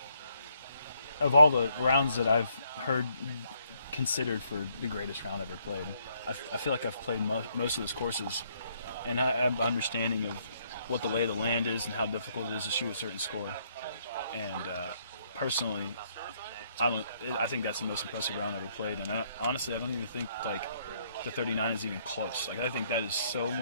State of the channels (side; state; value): both; inverted; correlation -0.70